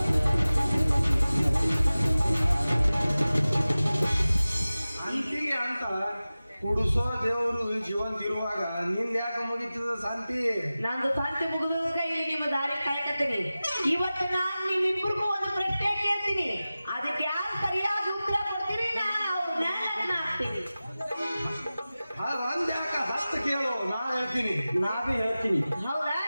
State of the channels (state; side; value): inverted; both; correlation -0.97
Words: ಅಂತಿಗೆ ಅಂತ ಕುಡಿಸೋ ದೇವರು ಜೀವಂತ ಇರುವಾಗ ನಿಂದ ಯಾಕೆ ಮುಗಿತದ ಶಾಂತಿ ನಂದು ಶಾಂತಿ ಮುಗಿದಾಗ ಇಲ್ಲಿ ನಿಮ್ಮ ದಾರಿ ಕಾಯ್ಕತ್ತೀನಿ ಇವತ್ತು ನಾನು ನಿಮ್ಮಿಬ್ಬರಿಗೂ ಒಂದು ಪ್ರಶ್ನೆ ಕೇಳ್ತೀನಿ ಅದಕ್ಕೆ ಯಾರು ಸರಿಯಾಗಿ ಉತ್ತರ ಕೊಡ್ತೀರಿ ನಾನು ಆಗ್ತೀನಿ ಒಂದ್ ಯಾಕ 10 ಕೇಳು ನಾ ಹೇಳ್ತೀನಿ ನಾವೇ ಹೇಳ್ತೀನಿ ಹೌದಾ